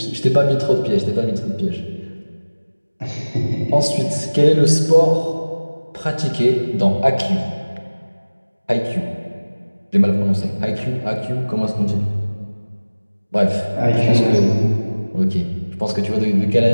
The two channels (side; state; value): both; inverted; correlation -1.00